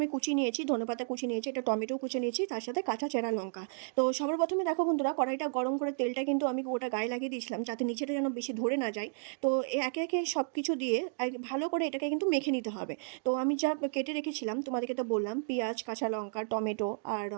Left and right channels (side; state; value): left; silent; digital silence